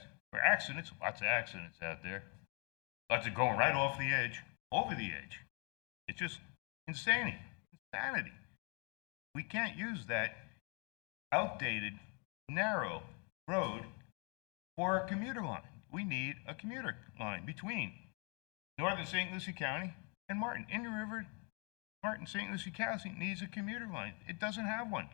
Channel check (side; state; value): right; quieter; 35.3 dB